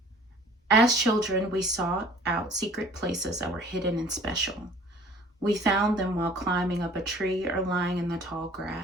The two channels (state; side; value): normal; both; correlation 0.51